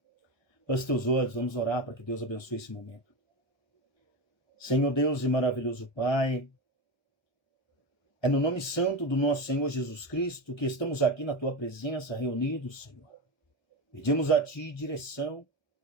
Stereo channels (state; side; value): late; right; 1.1 ms